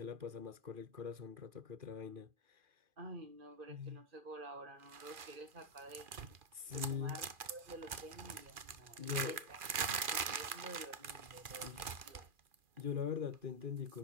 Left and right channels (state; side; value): late; left; 2.4 ms